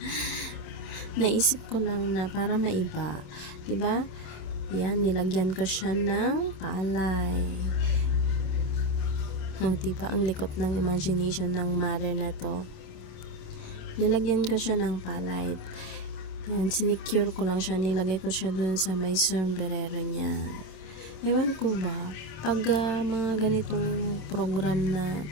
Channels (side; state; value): right; late; 27 ms